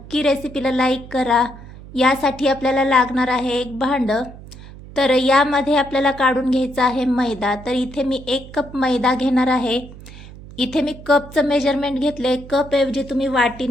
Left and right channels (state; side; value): noise; right; hum, 17 dB below the sound